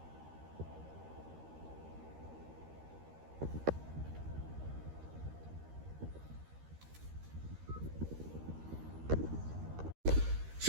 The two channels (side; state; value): left; late; 13 ms